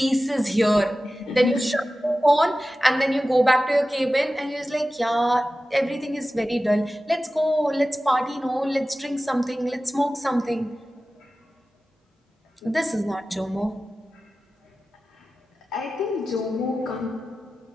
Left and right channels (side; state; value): both; normal; correlation 0.95